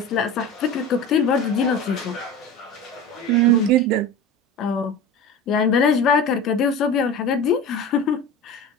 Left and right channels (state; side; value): normal; both; correlation 0.31